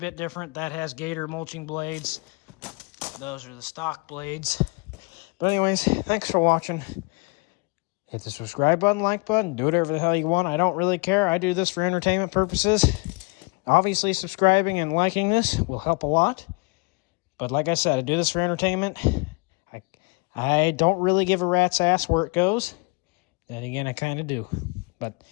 different. That has Gator mulching blades. Those are the stock blades. But anyways, thanks for watching. Hit the subscribe button, like button, do whatever the hell you want. I don't really care. I do this for entertainment purposes. Obviously, subscribing and liking this will help a lot. But like I said, I do this for entertainment. I don't really give a rat's ass where it goes. Then again, I kind of do. But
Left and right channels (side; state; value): right; quieter; 30.6 dB